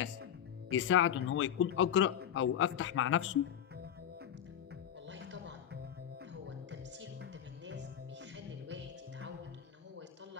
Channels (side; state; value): right; quieter; 9.6 dB